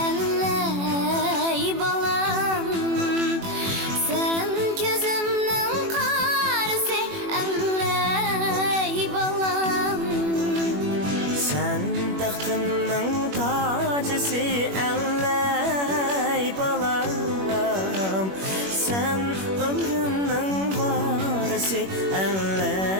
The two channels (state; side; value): late; left; 21 ms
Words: ەللەي balam sen gözümnün qarısı ەللەي balam sen taxtımның tacısı ەللەي balam sen ömrümның varısı